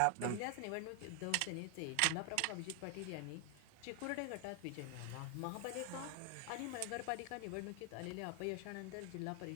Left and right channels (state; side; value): different; both; correlation 0.00